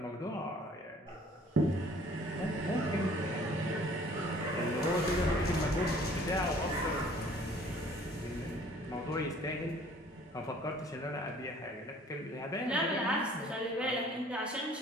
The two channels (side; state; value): both; normal; correlation 0.54